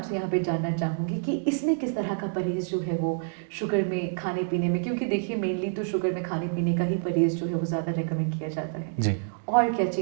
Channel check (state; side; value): silent; left; digital silence